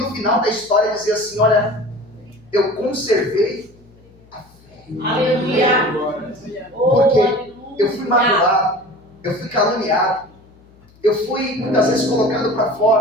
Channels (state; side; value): noise; left; hum, 28 dB below the sound